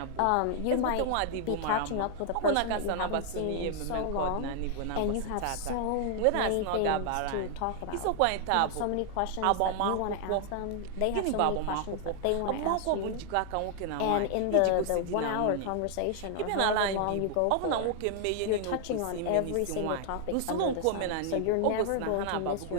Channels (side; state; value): both; different; correlation 0.00